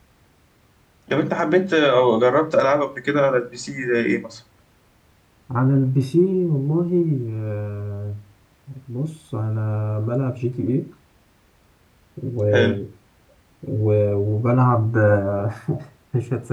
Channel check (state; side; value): identical; both; correlation 1.00